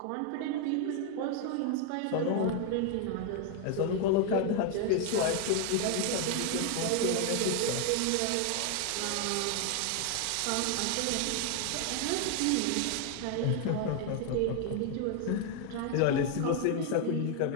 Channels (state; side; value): different; both; correlation 0.01